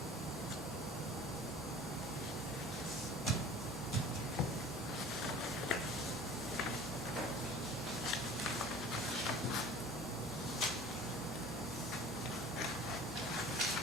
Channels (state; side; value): normal; both; correlation 0.44